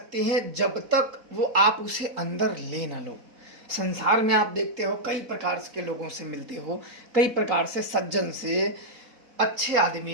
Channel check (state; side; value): late; left; 4.1 ms